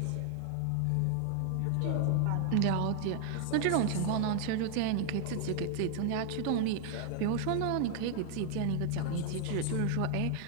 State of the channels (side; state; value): both; different; correlation 0.00